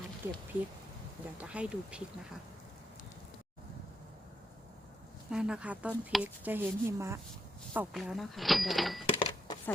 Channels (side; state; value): both; normal; correlation 0.80